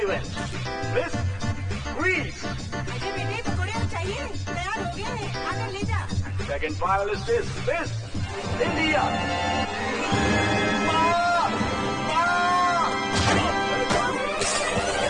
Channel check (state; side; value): identical; both; correlation 1.00